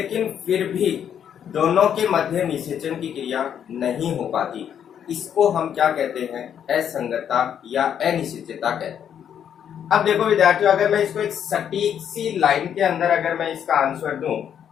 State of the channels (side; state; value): right; quieter; 8.9 dB